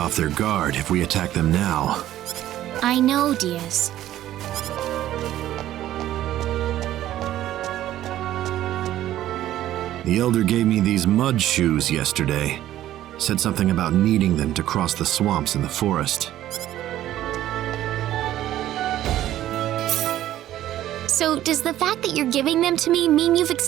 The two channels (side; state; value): left; quieter; 13.2 dB